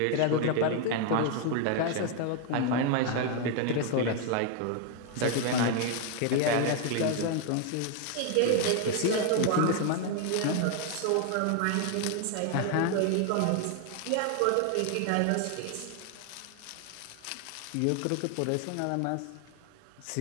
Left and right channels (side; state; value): both; different; correlation 0.01